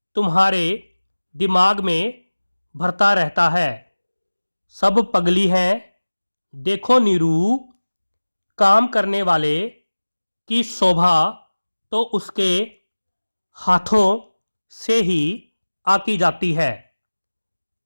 तुम्हारे दिमाग में भरता रहता है। सब पगली हैं। देखो नीरू, काम करने वाले की शोभा तो उसके हाथों से ही आकी जाती है।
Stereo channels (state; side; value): inverted; both; correlation -1.00